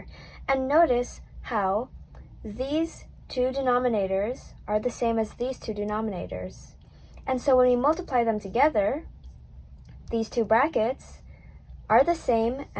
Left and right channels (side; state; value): both; identical; correlation 1.00